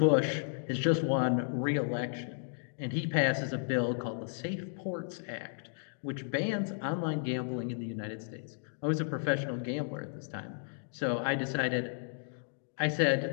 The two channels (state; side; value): silent; right; digital silence